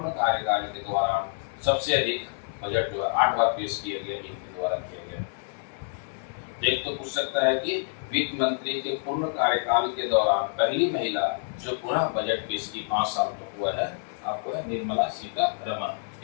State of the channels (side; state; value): right; silent; 59 dB below the other